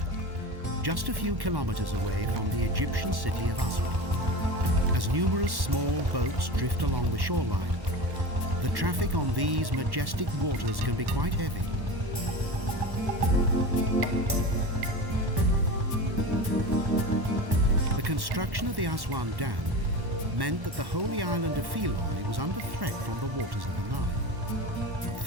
just a few kilometres away from the Egyptian city of Aswan. As numerous small boats drift along the shoreline, the traffic on these majestic waters can be quite heavy. The construction of the Aswan Dam meant that the holy island of Philae was under threat from the waters of the Nile.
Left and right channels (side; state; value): left; late; 1.1 ms